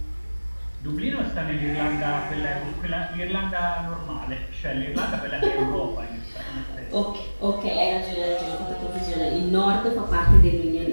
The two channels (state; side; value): inverted; both; correlation -1.00